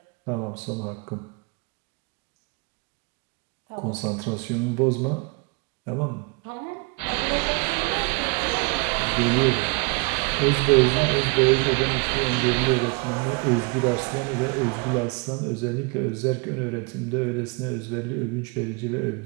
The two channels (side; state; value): left; quieter; 29.6 dB